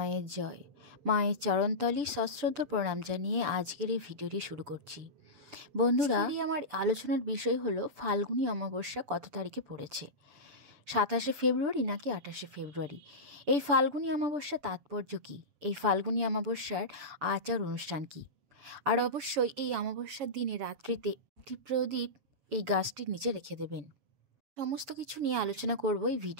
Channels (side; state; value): left; late; 6.9 ms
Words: জয়। মায়ের চরণতলে সশ্রদ্ধ প্রণাম জানিয়ে আজকের এই ভিডিওটি শুরু করছি। বন্ধুরা, আমার আলোচনার বিষয় হলো ফাল্গুনী অমাবস্যা কত তারিখে পড়েছে, 27শে ফেব্রুয়ারি নাকি 28শে ফেব্রুয়ারি। এই ফাল্গুনী অমাবস্যা তাৎপর্য কী, এই ফাল্গুনী অমাবস্যার আচার অনুষ্ঠান কী, আর অবশ্যই এই অমাবস্যার দিনে রাত্রিতে একটি প্রদীপ এই গাছটির নিচে রেখে দেবেন। সমস্ত কিছু নিয়ে আলোচনা করব এই